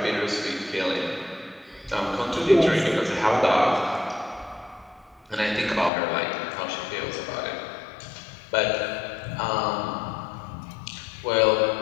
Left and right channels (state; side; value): drops out; right; at 5.9 s